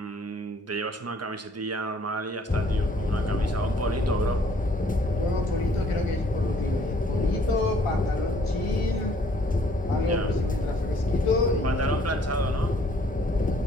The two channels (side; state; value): both; normal; correlation 0.61